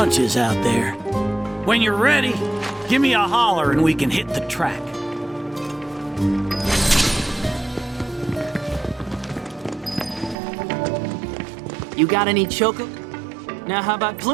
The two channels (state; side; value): drops out; left; at 10.4 s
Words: out there. When you're ready, give me a holler and we can hit the track. You got any choco? Now how about